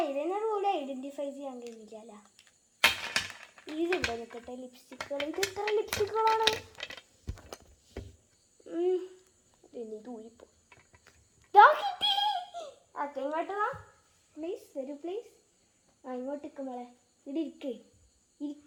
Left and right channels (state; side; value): identical; both; correlation 1.00